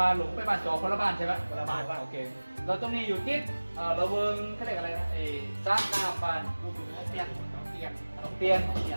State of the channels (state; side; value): inverted; both; correlation -1.00